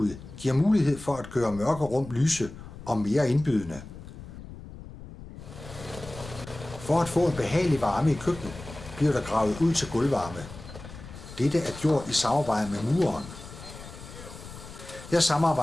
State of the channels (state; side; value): noise; left; rumble, 14 dB below the sound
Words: giver mulighed for at gøre mørke rum lyse og mere indbydende. For at få en behagelig varme i køkkenet, bliver der gravet ud til gulvvarme. Dette er gjort i samarbejde med mureren. Jeg